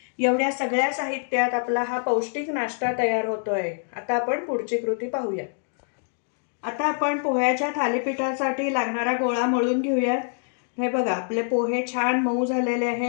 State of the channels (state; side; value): silent; right; digital silence